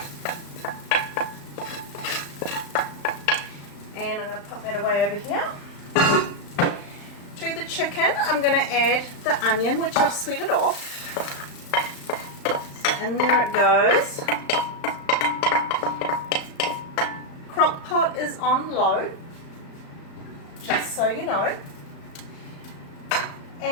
And I'm going to pop that away over here. To the chicken I'm going to add the onion which I've sweeted off. And there it goes. Crock pot is on low, just so you know.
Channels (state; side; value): late; right; 35 ms